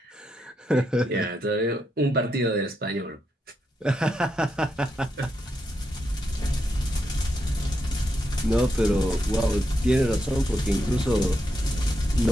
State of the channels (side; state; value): both; normal; correlation 0.83